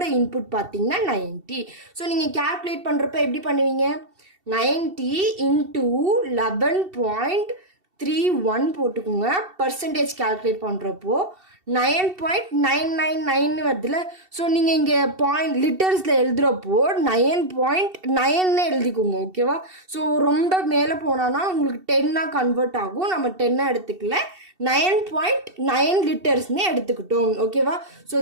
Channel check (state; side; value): late; left; 2.7 ms